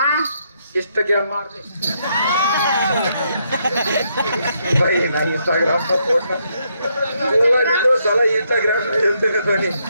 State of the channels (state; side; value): inverted; both; correlation -0.76